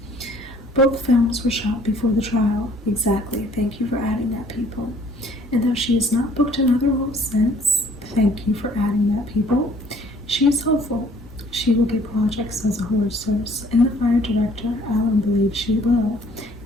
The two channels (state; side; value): normal; both; correlation 0.58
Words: Both films were shot before the trial. Exactly. Thank you for adding that, people. And though she has not booked another role since, thank you for adding that, people, she is hopeful she will get projects as a horror source. In the Fire director, Alan believes she will.